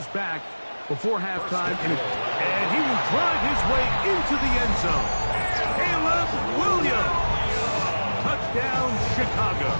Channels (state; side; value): inverted; both; correlation -1.00